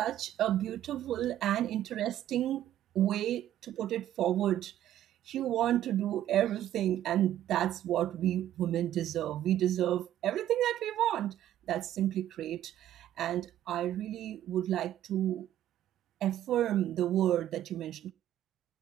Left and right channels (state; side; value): quieter; left; 12.1 dB